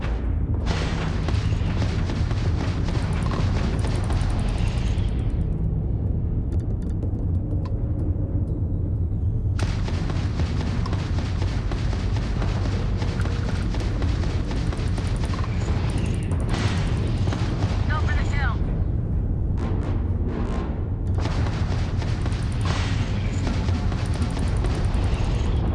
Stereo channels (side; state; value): both; identical; correlation 1.00